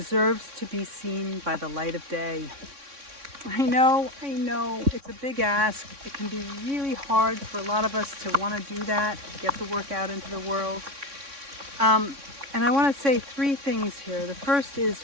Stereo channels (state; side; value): late; left; 3.6 ms